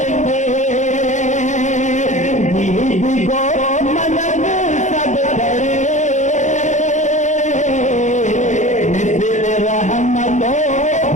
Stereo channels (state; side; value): late; right; 0.35 ms